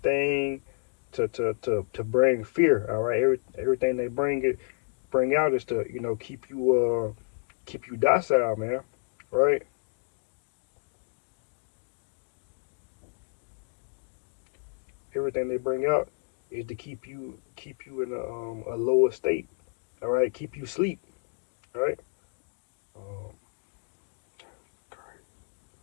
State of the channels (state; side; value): silent; right; digital silence